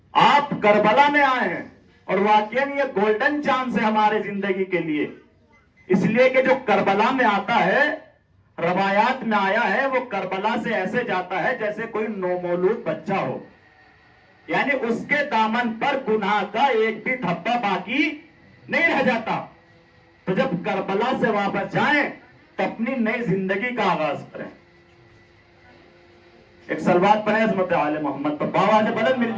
آپ کربلا میں آئے ہیں اور واقعاً یہ گولڈن چانس ہے ہمارے زندگی کے لیے، اس لیے کہ جو کربلا میں آتا ہے، روایات میں آیا ہے، وہ کربلا سے ایسے جاتا ہے جیسے کوئی نومولود بچہ ہو، یعنی اس کے دامن پر گناہ کا ایک بھی دھبا باقی نہیں رہ جاتا. تو جب کربلا سے واپس جائیں تو اپنی نئی زندگی کا آغاز کریں. ایک سلوات پڑھیں عظمت آل محمد پر، باواز بلند مل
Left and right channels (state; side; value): identical; both; correlation 1.00